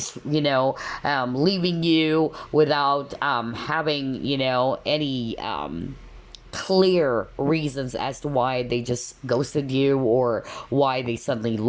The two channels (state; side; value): identical; both; correlation 1.00